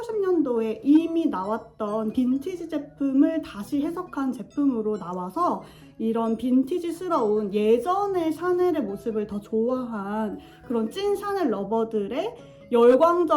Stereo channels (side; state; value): both; identical; correlation 1.00